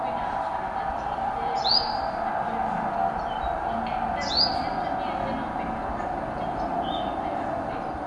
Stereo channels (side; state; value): both; identical; correlation 1.00